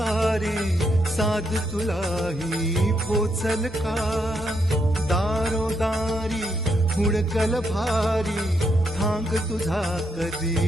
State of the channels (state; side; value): normal; both; correlation 0.78